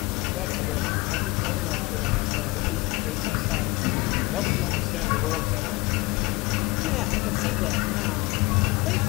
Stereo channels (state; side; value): quieter; right; 22.4 dB